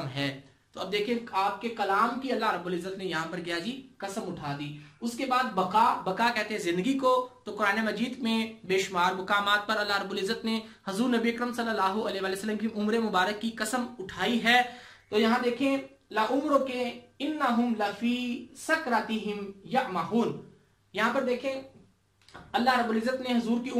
है। तो अब देखिए आपके कलाम की अल्लाह रब्बुल इज्जत ने यहाँ पर क्या जी कसम उठा दी। उसके बाद बका, बका कहते हैं जिंदगी को, तो कुरान मजीद में बेशुमार मुकामात पर अल्लाह रब्बुल इज्जत ने हजूर नबी अकरम सल्लल्लाहु अलैहि वसल्लम की उम्र मुबारक की कसम उठाई है। तो यहाँ देखें ला उम्र के इन्नहुम लफी सकरातिहिम यअमहून, यहाँ पर देखें अल्लाह रब्बुल इज्जत ने हजूर की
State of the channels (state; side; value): identical; both; correlation 1.00